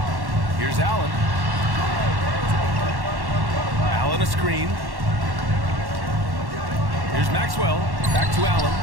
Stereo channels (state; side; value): late; left; 1.1 ms